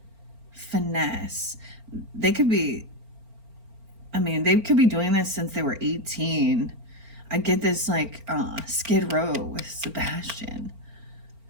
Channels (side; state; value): left; late; 4.4 ms